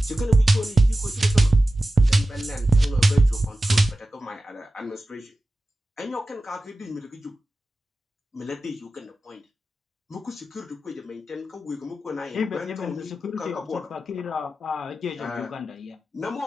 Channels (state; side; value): normal; both; correlation 0.94